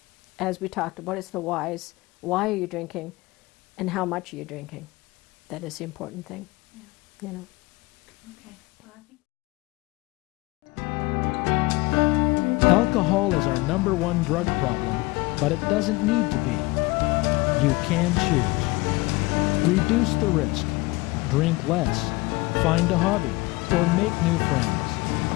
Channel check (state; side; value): quieter; right; 23.1 dB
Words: as we talked about, it's the whys. Why are you drinking? and how much are you drinking? That is the important thing. Yeah. You know. Okay. Well, I think Alcohol is our #1 drug problem, but it doesn't need to be. You can choose. Reduce the risk, drink less, find a hobby, or make new friends.